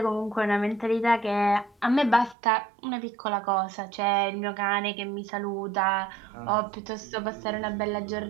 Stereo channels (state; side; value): drops out; left; at 2.4 s